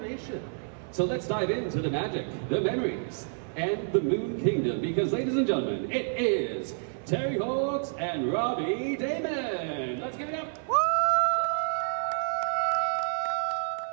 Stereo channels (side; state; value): left; silent; 56 dB below the other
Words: So let's dive into the magic, the memories, and the Moon Kingdom, because ladies and gentlemen, it is Terri and Robbie Daymond. Let's give it up. Woo!